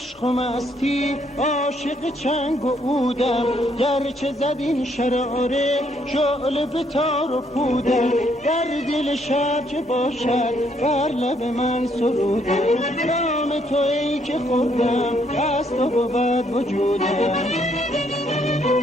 و مستی عاشق چنگ و عودم، گرچه زد این شراره شعله به تار و پودم. در دل شب چه باشد بر لب من سرودم، نام تو ای که خوردم از تو بود وجودم.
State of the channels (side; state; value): both; normal; correlation 0.70